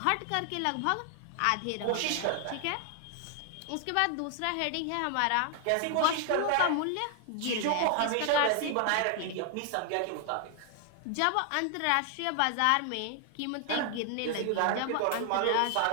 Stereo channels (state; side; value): different; both; correlation 0.00